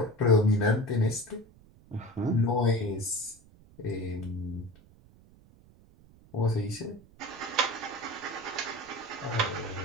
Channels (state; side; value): noise; right; rumble, 25 dB below the sound